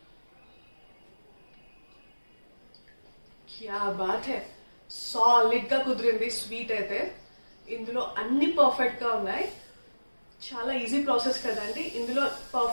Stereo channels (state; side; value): inverted; both; correlation -1.00